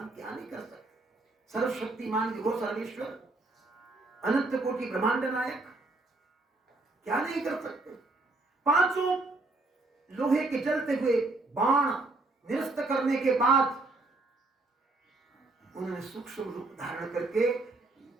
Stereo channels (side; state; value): left; quieter; 3.1 dB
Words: क्या नहीं कर सकते? सर्वशक्तिमान विभो सर्वेश्वर, अनंत कोटि ब्रह्मांड नायक, क्या नहीं कर सकते? 5 लोहे के जलते हुए बाण निरस्त करने के बाद उन्होंने सूक्ष्म रूप धारण करके